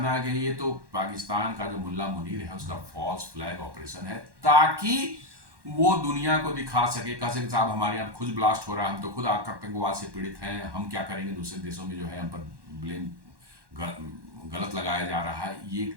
है कि ये तो पाकिस्तान का जो मुल्ला मुनीर है उसका फॉल्स फ्लैग ऑपरेशन है, ताकि वो दुनिया को दिखा सके, कह सके साहब हमारे यहाँ खुद ब्लास्ट हो रहा है, हम तो खुद आतंकवाद से पीड़ित हैं, हम क्या करेंगे, दूसरे देशों में जो है हम पर ब्लेम गलत लगाया जा रहा है। ये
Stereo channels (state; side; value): late; left; 1.1 ms